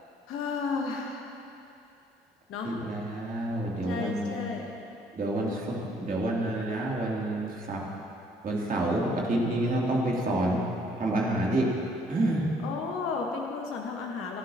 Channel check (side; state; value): both; normal; correlation 0.64